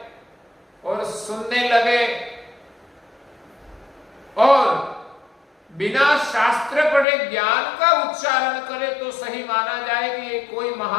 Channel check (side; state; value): right; drops out; at 7.1 s